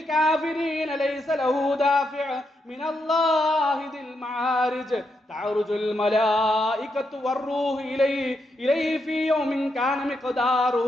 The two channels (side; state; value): both; normal; correlation 0.82